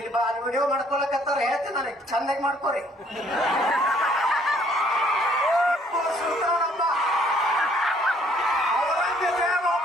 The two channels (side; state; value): both; normal; correlation 0.62